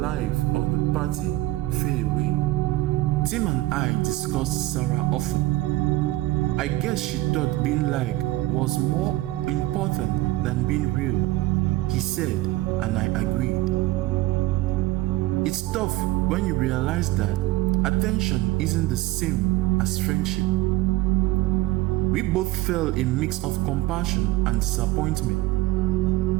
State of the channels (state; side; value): quieter; left; 17.7 dB